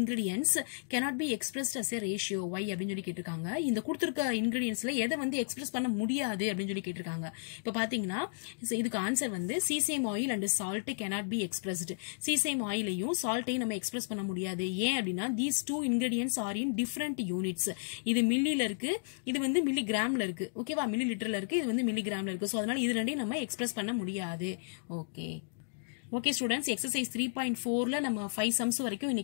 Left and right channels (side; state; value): right; silent; digital silence